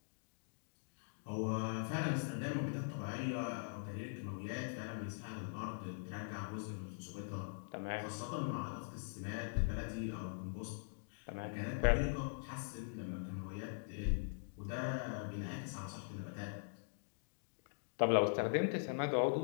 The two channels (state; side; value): silent; right; digital silence